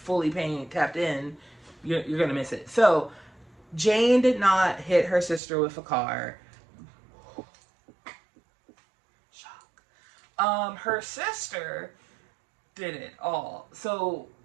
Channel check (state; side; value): drops out; left; at 5.4 s